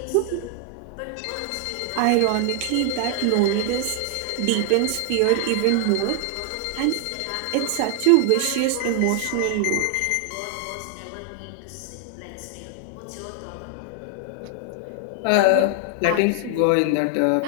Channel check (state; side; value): different; both; correlation 0.00